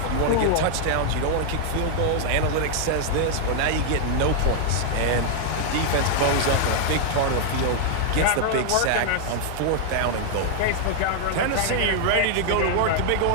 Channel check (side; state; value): both; different; correlation 0.00